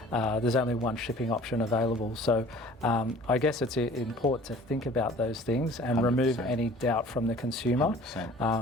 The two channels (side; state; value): both; normal; correlation 0.48